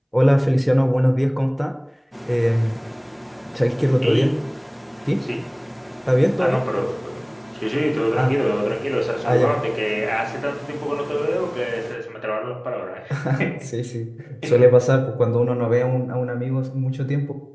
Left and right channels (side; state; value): both; identical; correlation 1.00